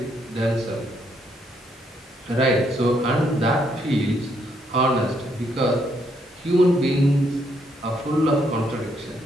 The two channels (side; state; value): both; normal; correlation 0.74